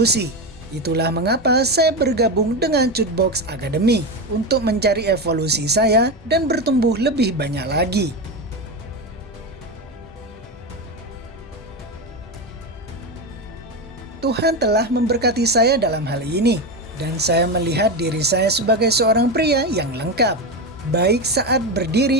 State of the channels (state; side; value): normal; both; correlation 0.16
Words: Itulah mengapa saya bergabung dengan Chutebox Academy untuk mencari evolusi saya dan bertumbuh lebih banyak lagi. Tuhan telah memberkati saya dalam hal ini, dan saya melihat diri saya sebagai seorang pria yang lengkap, baik saat